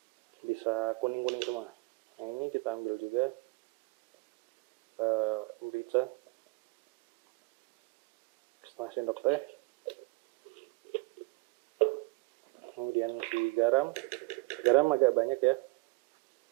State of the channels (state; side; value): quieter; left; 25.8 dB